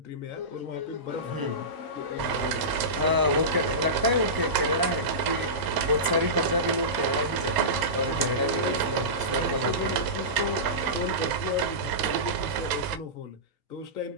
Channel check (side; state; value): left; late; 1.0 ms